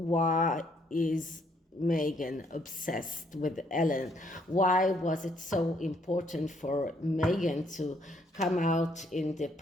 is Meghan obsessed with Ellen? Why was it so important for Meghan to come out in the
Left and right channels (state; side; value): normal; both; correlation 0.69